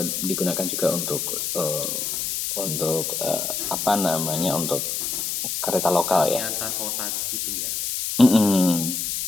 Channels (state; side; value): noise; left; hiss, 2 dB below the sound